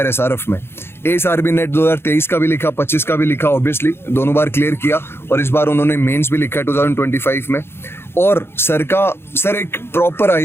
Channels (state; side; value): late; right; 0.11 ms